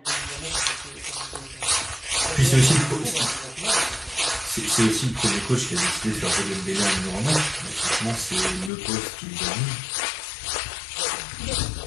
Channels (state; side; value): drops out; right; at 8.7 s